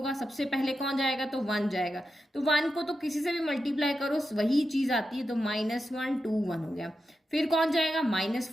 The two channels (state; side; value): normal; both; correlation 0.88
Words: सबसे पहले कौन जाएगा, तो 1 जाएगा। तो 1 को तो किसी से भी मल्टीप्लाई करो वही चीज आती है, तो -1 2 1 हो गया। फिर कौन जाएगा,